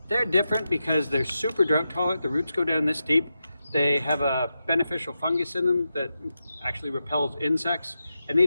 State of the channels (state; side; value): inverted; both; correlation -0.89